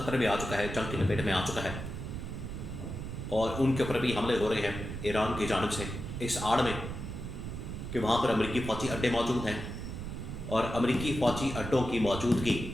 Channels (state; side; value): noise; right; rumble, 7 dB below the sound